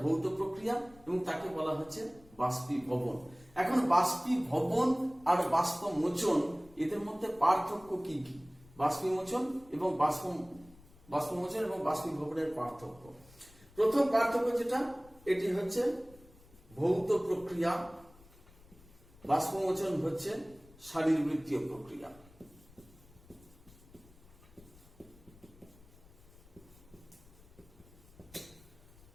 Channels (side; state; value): left; noise; rumble, 25 dB below the sound